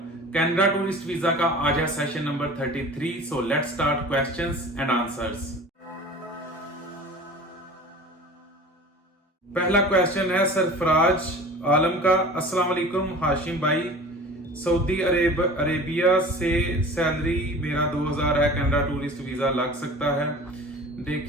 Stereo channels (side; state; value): both; normal; correlation 0.40